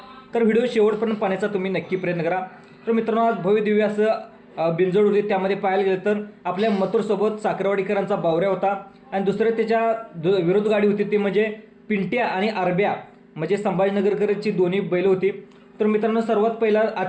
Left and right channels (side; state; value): both; identical; correlation 1.00